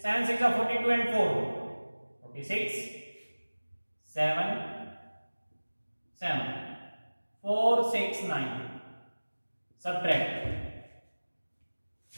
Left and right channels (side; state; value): both; inverted; correlation -1.00